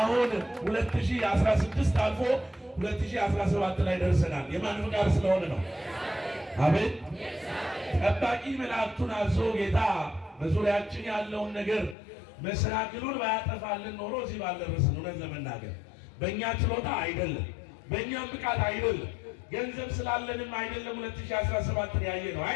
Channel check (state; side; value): drops out; right; at 12.0 s